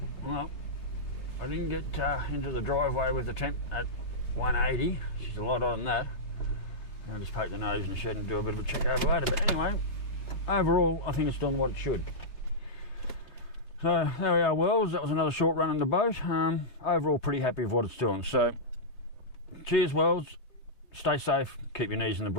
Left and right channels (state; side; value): late; right; 3.3 ms